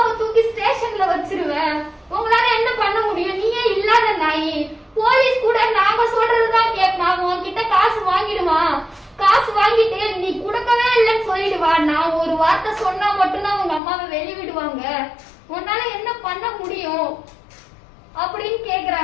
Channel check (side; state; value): right; drops out; at 13.8 s